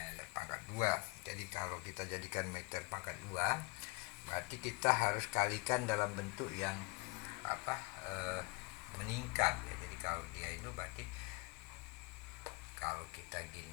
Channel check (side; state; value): right; quieter; 25.1 dB